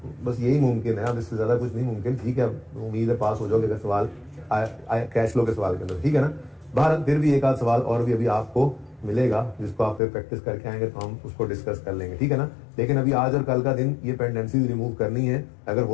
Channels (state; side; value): drops out; right; at 10.0 s